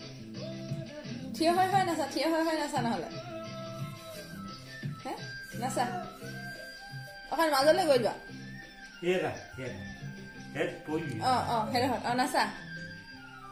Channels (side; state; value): both; identical; correlation 1.00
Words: থিয় হৈ নাচা নহ'লে হে নাচা অকণ মাজলৈ গৈ যোৱা হেৰা হেড পৰি সেইটো নাচা